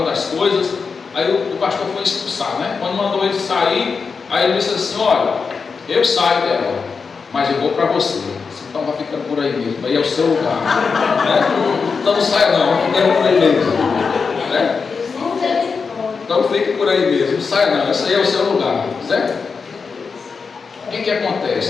as coisas. Aí o pastor foi expulsar, né? Quando mandou ele sair, aí ele disse assim: olha, eu saio dela, mas eu vou para você. Então vai ficando por aí mesmo, aí é o seu lugar, né? Então não saia não, vai ficando por aí mesmo, né? Então fique por aí mesmo, não saia não, esse aí é o seu lugar, certo? O que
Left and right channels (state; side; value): quieter; right; 5.2 dB